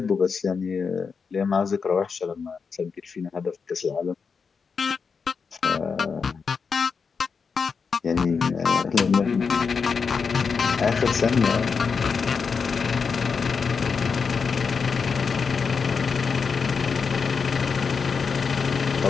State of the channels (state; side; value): quieter; right; 5.6 dB